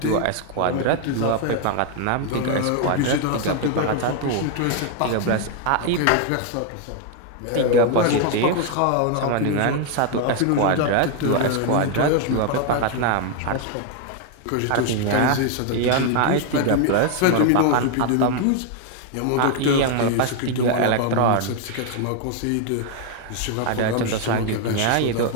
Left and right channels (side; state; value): both; different; correlation 0.00